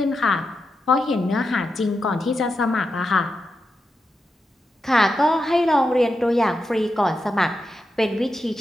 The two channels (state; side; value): normal; both; correlation 0.87